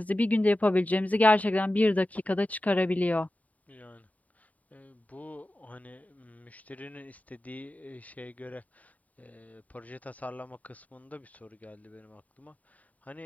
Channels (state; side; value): late; right; 0.071 ms